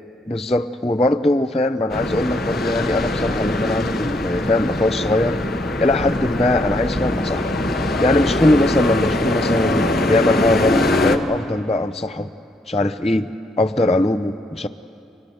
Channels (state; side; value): normal; both; correlation 0.72